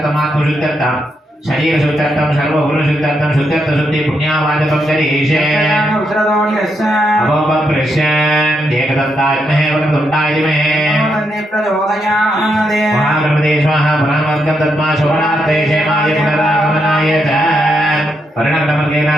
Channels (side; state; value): both; normal; correlation 0.80